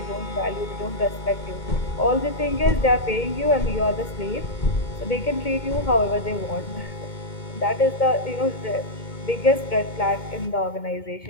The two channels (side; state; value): right; late; 2.2 ms